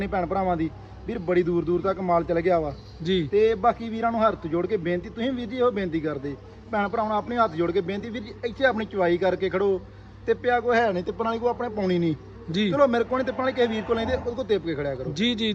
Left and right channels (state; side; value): identical; both; correlation 1.00